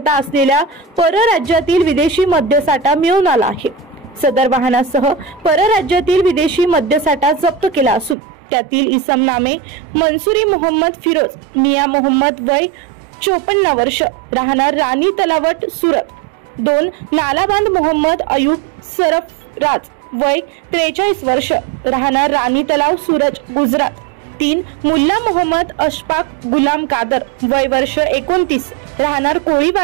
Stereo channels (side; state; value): left; drops out; at 8.2 s